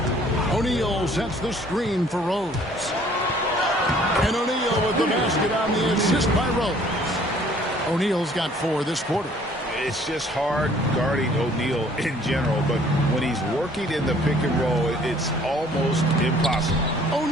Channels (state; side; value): normal; both; correlation 0.57